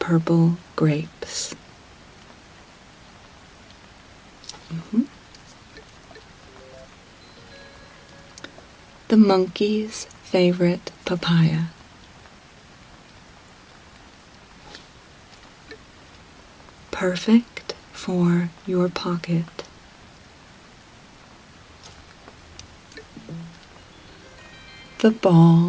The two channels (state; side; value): identical; both; correlation 1.00